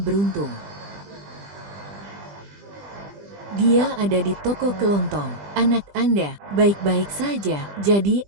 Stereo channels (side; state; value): left; late; 20 ms